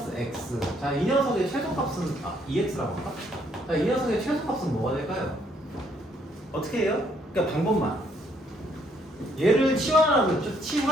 x. 자, 이 녀석의 최소값은 2x라고 할까? 자, 이 녀석의 최소값은 뭐가 될까요? 어떻게 해요? 그러니까 방법만. 얘를 치환하라고 했죠.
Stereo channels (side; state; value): both; normal; correlation 0.68